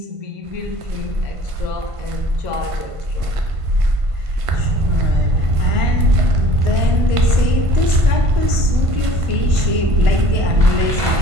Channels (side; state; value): left; late; 1.5 ms